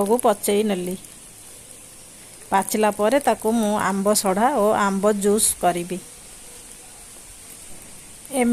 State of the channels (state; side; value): identical; both; correlation 1.00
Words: को पचई नेली। पाचिला परे ताकू मु आंब सढ़ा और आंब जूस करी।